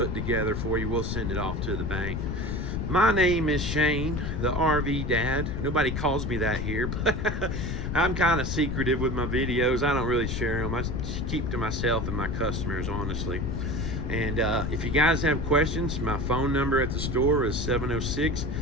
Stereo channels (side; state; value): left; noise; rumble, 2 dB below the sound